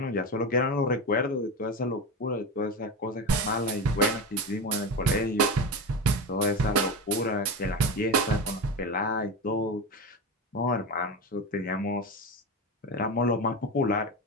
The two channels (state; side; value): normal; both; correlation 0.21